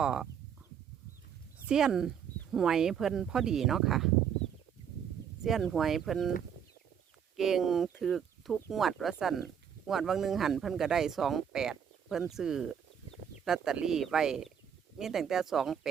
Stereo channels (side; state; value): left; quieter; 8.1 dB